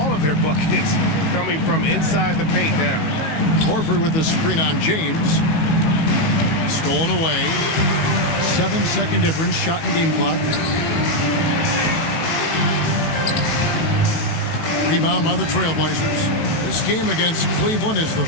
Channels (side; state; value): right; late; 19 ms